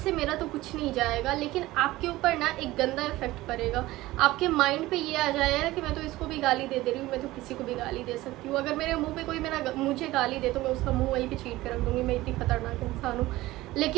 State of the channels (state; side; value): quieter; left; 17.8 dB